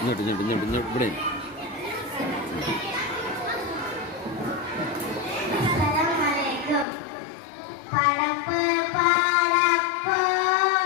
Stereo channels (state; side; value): drops out; right; at 6.9 s